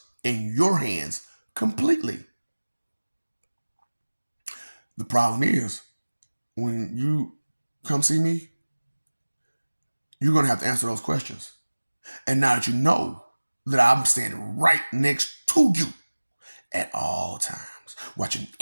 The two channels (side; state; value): both; inverted; correlation -1.00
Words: in your hands completely. The problem is, when you come see me, you're going to have to answer those questions. And now that you know that I'm standing right next to you at all times, watching